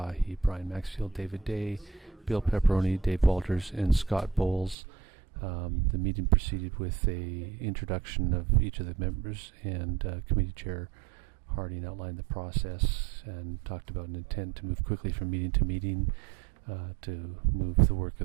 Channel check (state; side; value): drops out; left; at 4.8 s